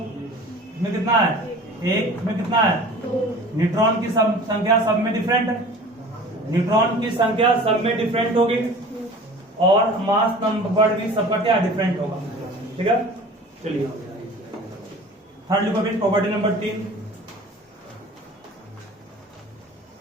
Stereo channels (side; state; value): both; normal; correlation 0.43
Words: इसमें कितना है 1, इसमें कितना है, न्यूट्रॉन की संख्या सब में डिफरेंट है, न्यूट्रॉन की संख्या सब में डिफरेंट होगी, और मास नंबर भी सबका क्या डिफरेंट होगा, ठीक है। चलिए थर्ड लिखो फिर, प्रॉपर्टी नंबर 3,